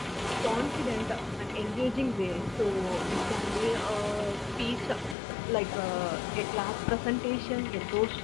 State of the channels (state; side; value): drops out; right; at 5.2 s